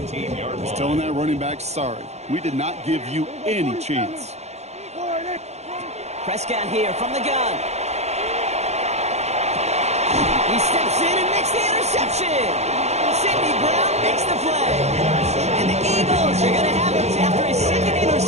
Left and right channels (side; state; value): left; late; 0.32 ms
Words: is telling that running back, sorry, we did not give you any chance. Prescott here from the gun. He steps in and makes the interception. Sidney Brown makes the play. And the Eagles are going to have it after his 2nd